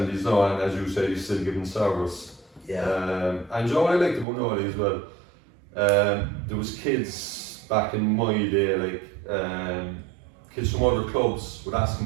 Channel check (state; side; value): drops out; left; at 4.2 s